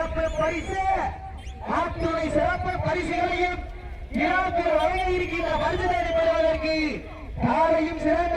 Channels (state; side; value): identical; both; correlation 1.00